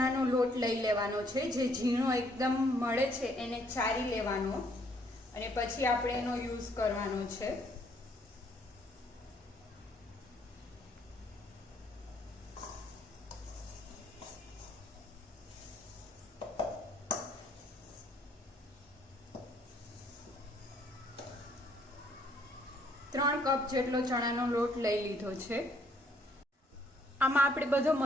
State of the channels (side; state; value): both; normal; correlation 0.67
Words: લોટ લઈ લેવાનો છે. જે ઝીણો એકદમ મળે છે એને ચારી લેવાનો અને પછી આપણે એનો યુઝ કરવાનો છે. ત્રણ કપ જેટલો ચણાનો લોટ લઈ લીધો છે. આમાં આપણે બધો